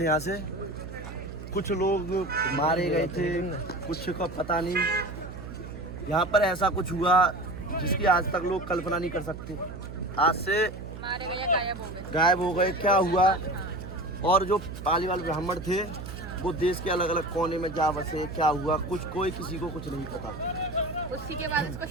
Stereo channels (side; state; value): right; noise; hum, 11 dB below the sound